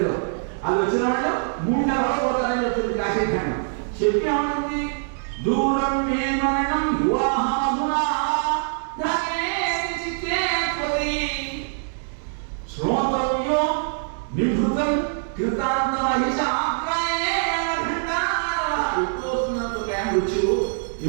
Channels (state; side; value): silent; left; digital silence